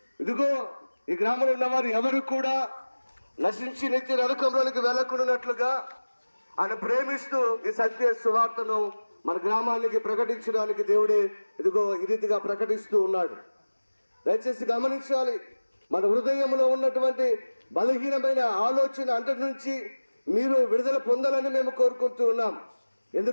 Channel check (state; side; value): inverted; both; correlation -1.00